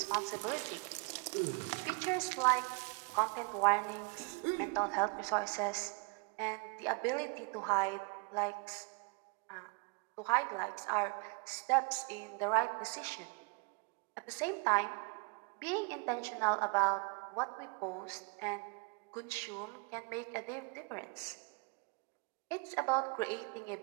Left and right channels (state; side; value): quieter; left; 31.8 dB